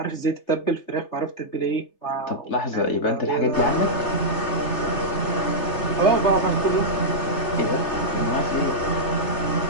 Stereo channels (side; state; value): right; late; 3.3 ms